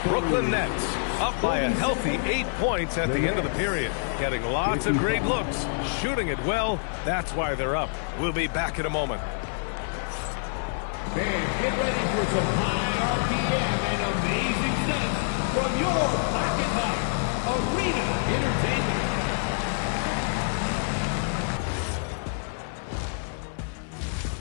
Brooklyn Nets up by a healthy 8 points at the end of the period. Getting lots of great looks. Shooting it well. That's why they're up. We'll be back in a moment. Fans, get ready for some high RPM and amazing stunts from your Pocket Hub Arena Entertainment.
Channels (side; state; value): right; silent; 60 dB below the other